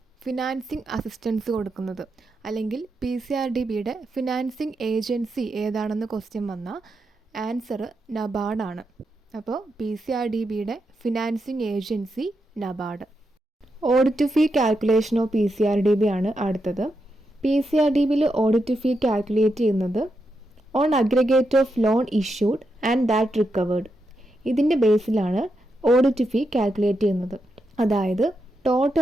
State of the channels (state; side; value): normal; both; correlation 0.85